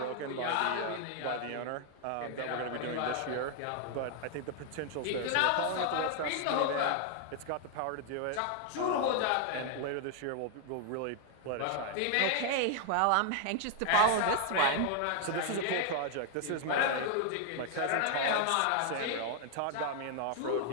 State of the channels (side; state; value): both; different; correlation 0.00